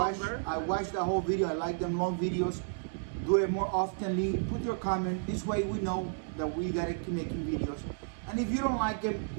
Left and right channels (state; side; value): silent; left; digital silence